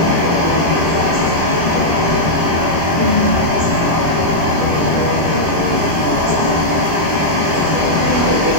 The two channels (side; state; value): left; late; 25 ms